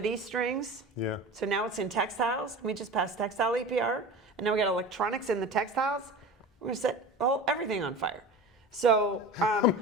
strings. Yeah. So now it's in textiles. We just passed textile EPR. And now we got electronics in the textiles. We're going to set everything on fire. So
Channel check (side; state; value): both; normal; correlation 0.34